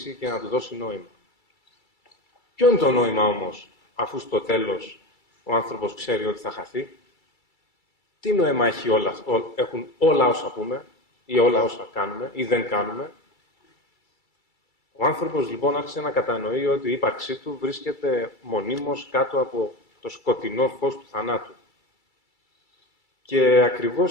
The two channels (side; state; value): right; late; 2.3 ms